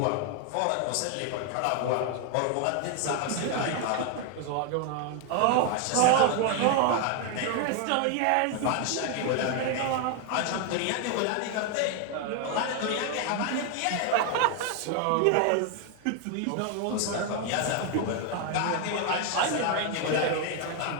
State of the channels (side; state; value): both; different; correlation 0.01